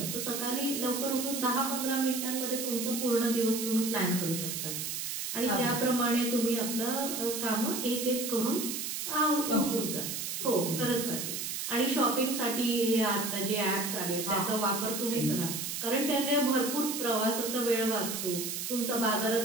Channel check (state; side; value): noise; right; hiss, 4 dB below the sound